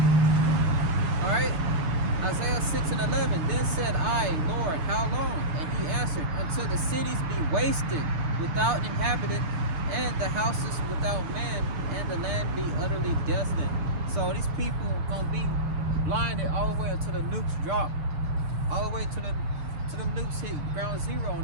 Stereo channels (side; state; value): left; late; 6.6 ms